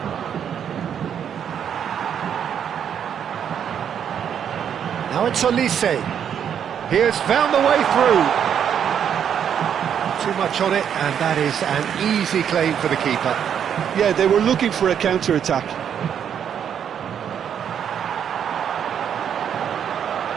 Now it's Olise. He has found the way through. Too much on it, and that is an easy claim for the keeper. Yeah, they were looking for a counter-attack.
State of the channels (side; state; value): left; quieter; 8.5 dB